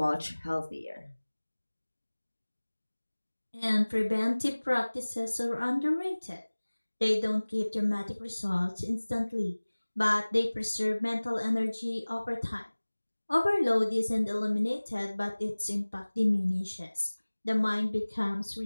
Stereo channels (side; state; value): both; inverted; correlation -1.00